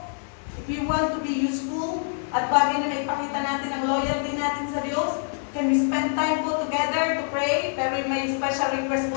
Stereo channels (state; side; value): silent; right; 61 dB below the other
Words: if we want to be useful at bagay na maipakita natin ang loyalty natin sa Diyos, can we spend time po together to pray? Pero may special request